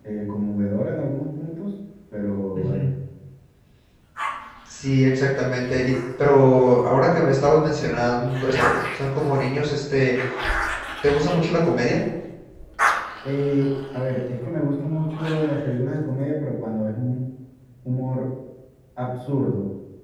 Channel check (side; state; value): both; identical; correlation 1.00